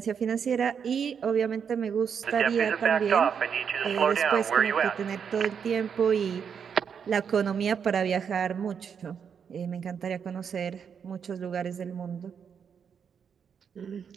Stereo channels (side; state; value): left; quieter; 7.1 dB